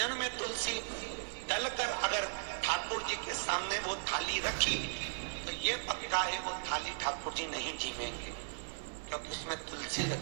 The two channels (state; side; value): silent; left; 53 dB below the other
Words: में तुलसी डलकर अगर ठाकुर जी के सामने वो थाली रखी, तो ये पक्का है वो थाली ठाकुर जी नहीं जीवेंगे, क्योंकि उसमें तुलसी